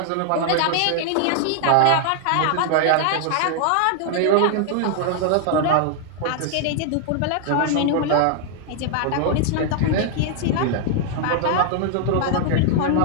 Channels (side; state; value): both; different; correlation 0.00